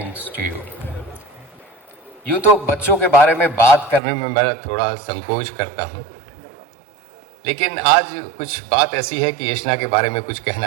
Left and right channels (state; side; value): drops out; left; at 4.0 s